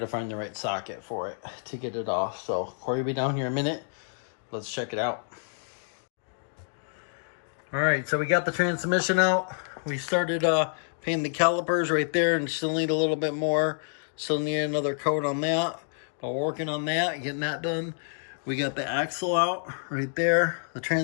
the right socket for it to get it off. So Corey will be down here in a minute. Let's check it out. All right, so we got the transmission out. We started painting the calipers right there and still need a little bit more. Still need another coat on that, but we're working on that, getting that done. We got the axle out right there. The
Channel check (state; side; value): silent; right; digital silence